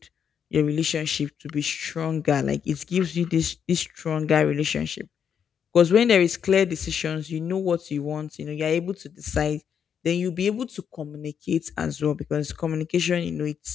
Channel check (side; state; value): right; quieter; 7.8 dB